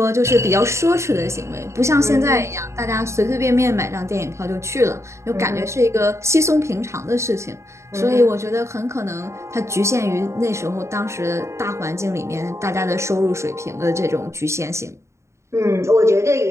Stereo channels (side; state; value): left; late; 0.14 ms